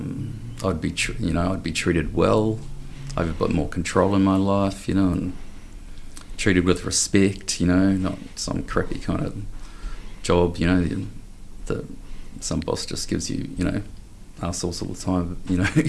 I'd be treated well. I have a bit more control in my life, and treated with respect, not some crappy kind of job, that some boss just gives you, assholes all the time,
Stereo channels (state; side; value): identical; both; correlation 1.00